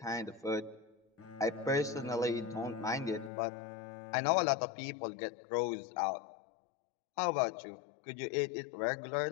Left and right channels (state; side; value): drops out; right; at 3.3 s